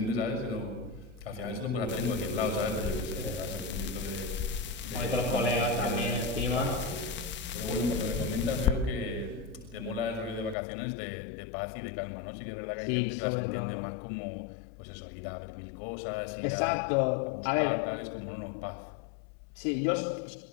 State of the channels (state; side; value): drops out; right; at 10.6 s